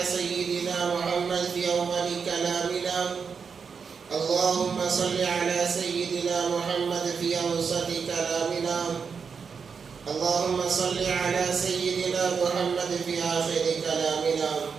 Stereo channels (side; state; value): left; quieter; 5.9 dB